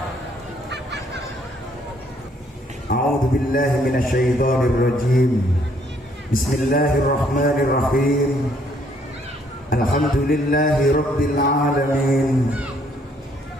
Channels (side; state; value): both; normal; correlation 0.67